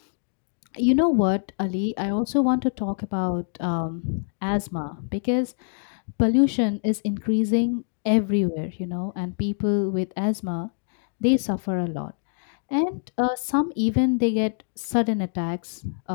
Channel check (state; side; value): silent; right; digital silence